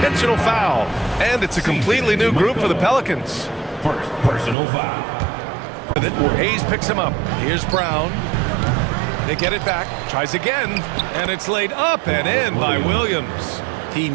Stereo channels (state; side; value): drops out; left; at 4.5 s